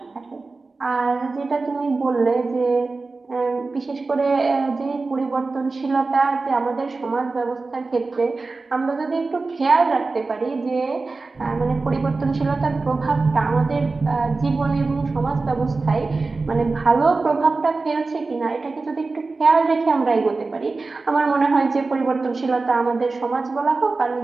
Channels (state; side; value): quieter; left; 3.8 dB